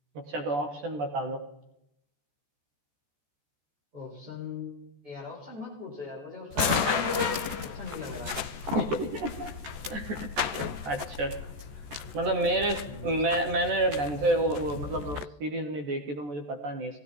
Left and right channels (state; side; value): late; left; 14 ms